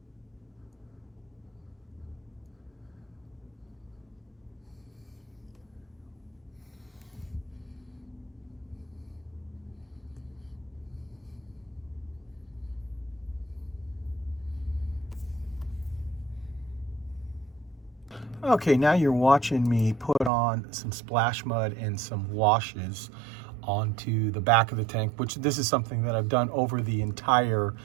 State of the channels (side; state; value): left; drops out; at 20.3 s